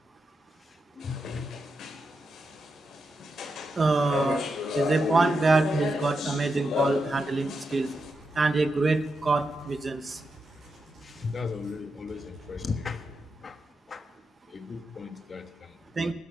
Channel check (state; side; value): normal; both; correlation 0.86